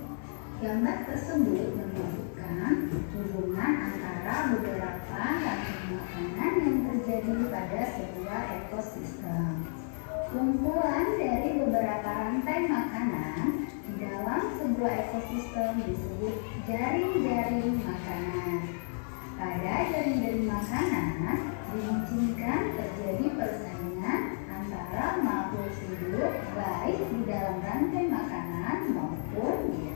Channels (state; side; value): silent; right; digital silence